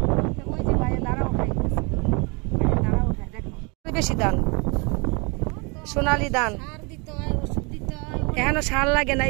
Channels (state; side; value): quieter; left; 30.6 dB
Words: ওই যে ভাইয়ের দাঁড়া উঠাইতেছে, দাঁড়া উঠায় দেখো বেশি ধান, সোনালি ধান। এখনো সার লাগে না,